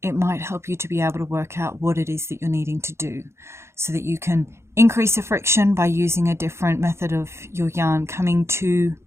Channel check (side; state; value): left; late; 0.13 ms